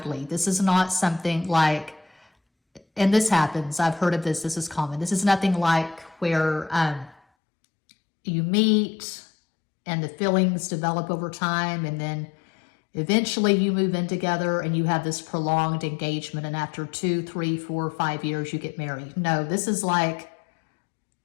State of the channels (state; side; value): drops out; right; at 7.2 s